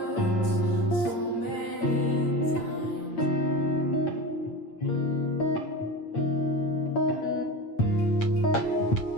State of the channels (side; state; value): right; late; 8.7 ms